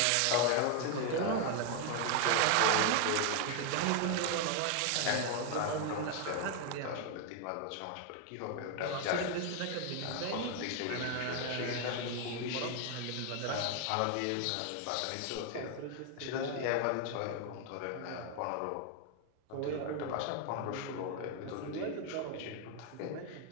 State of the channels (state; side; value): different; both; correlation 0.01